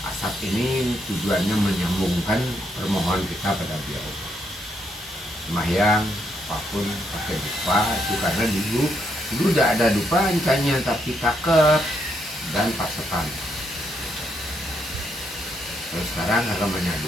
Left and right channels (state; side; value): normal; both; correlation 0.76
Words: Asap ini tujuannya menyambungkan permohonan kita pada beliau. Sembahyang apapun pakai dupa itu karena dulu tidak ada dupa encanya, tapi cakep dan pasetan. Kalau sekarang agamanya